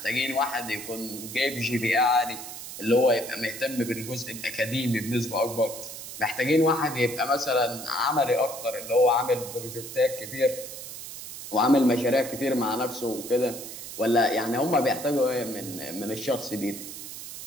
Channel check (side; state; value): right; noise; hiss, 10 dB below the sound